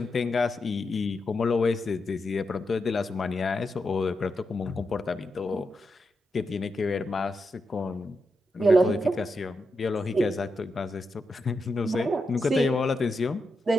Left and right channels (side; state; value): both; normal; correlation 0.85